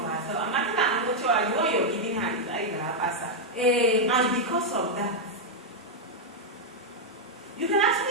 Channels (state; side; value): normal; both; correlation -0.02